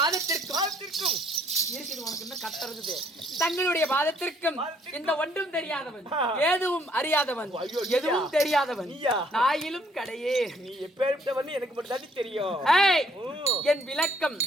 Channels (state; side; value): normal; both; correlation 0.64